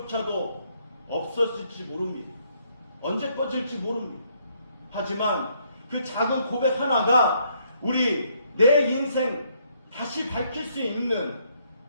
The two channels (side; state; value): both; inverted; correlation -0.70